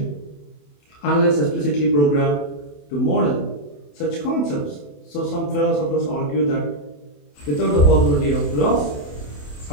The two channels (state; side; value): late; right; 28 ms